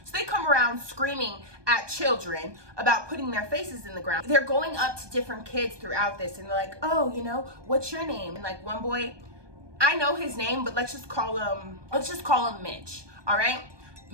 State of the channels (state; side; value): late; left; 1.2 ms